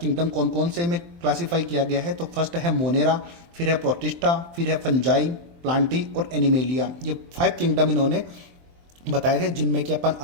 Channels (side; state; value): left; late; 23 ms